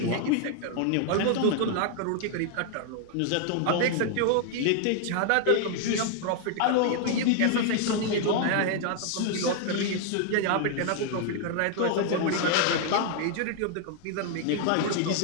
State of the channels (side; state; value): both; different; correlation 0.00